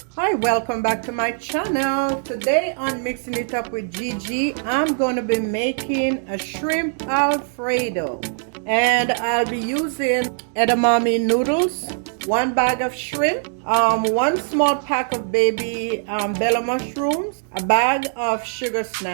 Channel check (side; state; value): left; silent; 65 dB below the other